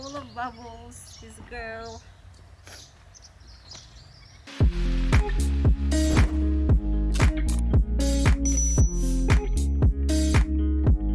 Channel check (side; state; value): both; identical; correlation 1.00